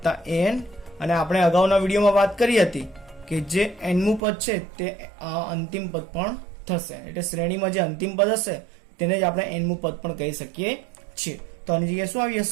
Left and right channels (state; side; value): drops out; left; at 4.2 s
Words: an। અને આપણે અગાઉના વિડીયોમાં વાત કરી હતી કે જે n મું પદ છે તે આ અંતિમ પદ પણ થશે, એટલે શ્રેણીમાં જે અંતિમ પદ હશે તેને જ આપણે n મું પદ પણ કહી શકીએ છીએ। તો આની જગ્યાએ શું આવી